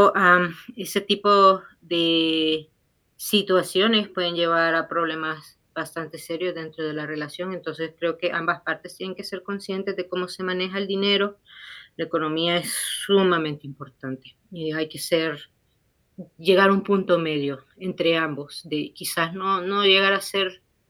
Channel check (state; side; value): identical; both; correlation 1.00